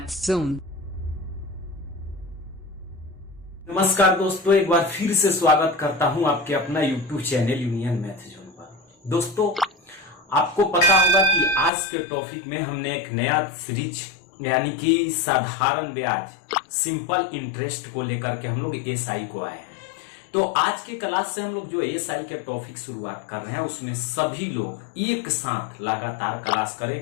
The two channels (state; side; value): drops out; right; at 11.7 s